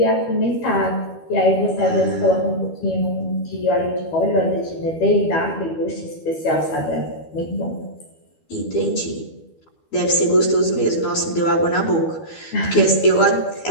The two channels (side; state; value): right; late; 12 ms